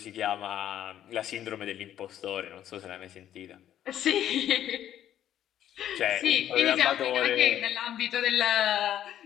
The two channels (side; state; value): right; quieter; 11.2 dB